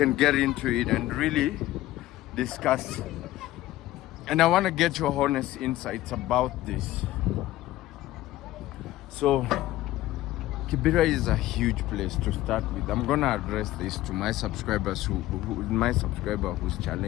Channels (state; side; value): quieter; right; 15.6 dB